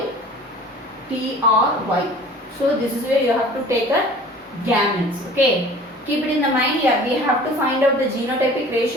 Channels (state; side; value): normal; both; correlation 0.45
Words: So this is where you have to take a gametes. Okay, keep it in the mind here. We have to find out the genotypic